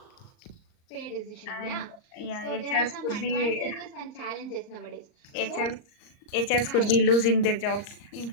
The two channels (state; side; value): late; right; 38 ms